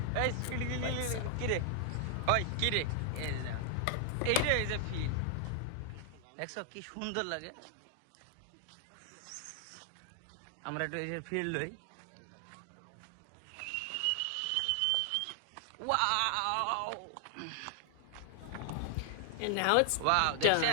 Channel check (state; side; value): different; both; correlation 0.00